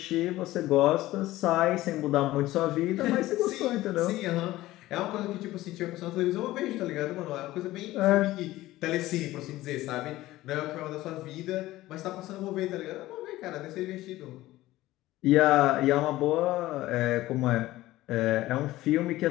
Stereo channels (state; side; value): quieter; right; 16.7 dB